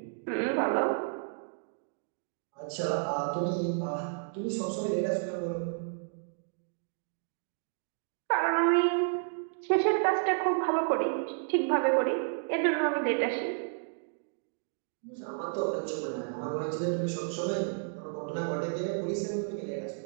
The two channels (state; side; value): silent; left; digital silence